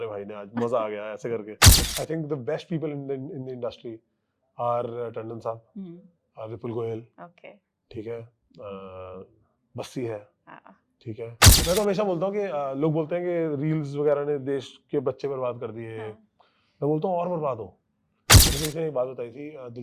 भाई ने, आज मजा आ गया ऐसे करके। I think the best people in the industry are Tandon साहब, विपुल गोयल, Okay. ठीक है, बस्सी है, हाँ. ठीक है। मैं तो हमेशा बोलता हूँ कि लोग बोलते हैं कि रील्स वगैरह ने देश के बच्चे बर्बाद कर दिए। हाँ. मैं बोलता हूँ और बर्बाद हो। मुझे किसी ने एक बात बताई थी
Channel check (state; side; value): identical; both; correlation 1.00